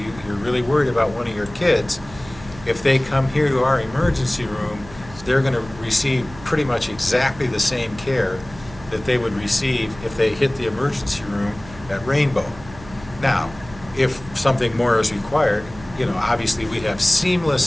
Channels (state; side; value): noise; right; hum, 18 dB below the sound